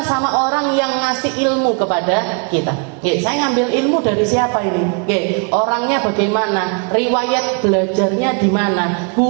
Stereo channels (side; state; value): left; quieter; 37.7 dB